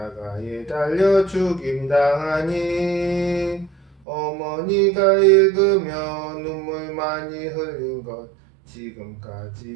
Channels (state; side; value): drops out; left; at 4.0 s